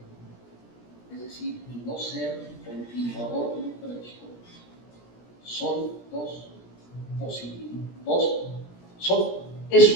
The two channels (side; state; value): right; late; 17 ms